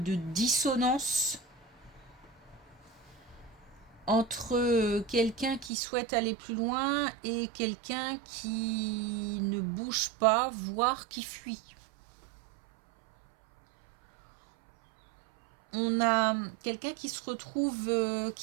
dissonance entre quelqu'un qui souhaite aller plus loin et quelqu'un qui ne bouge pas, voire qui fuit. On a quelqu'un qui se retrouve,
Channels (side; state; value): left; drops out; at 5.7 s